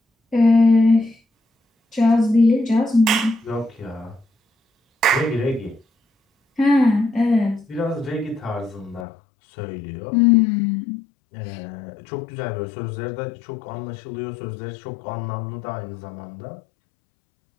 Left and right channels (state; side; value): drops out; right; at 9.1 s